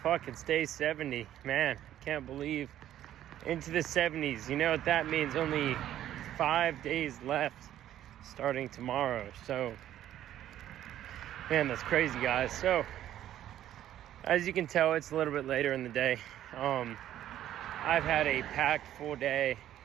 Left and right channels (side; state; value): left; quieter; 12.0 dB